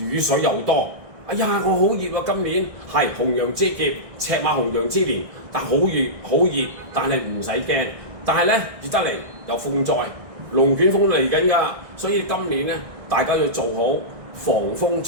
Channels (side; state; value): left; late; 1.6 ms